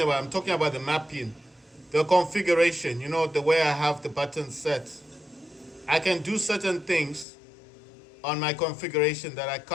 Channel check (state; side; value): drops out; right; at 7.2 s